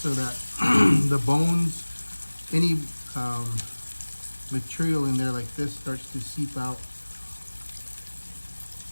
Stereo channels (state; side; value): inverted; both; correlation -1.00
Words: that the bones, any material in there like this starts to seep out.